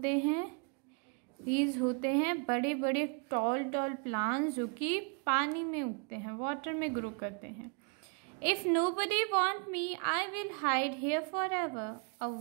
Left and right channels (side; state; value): left; quieter; 37.8 dB